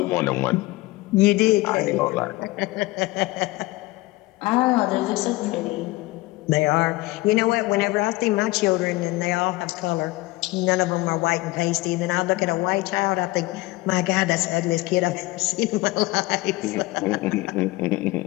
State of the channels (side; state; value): right; quieter; 20.4 dB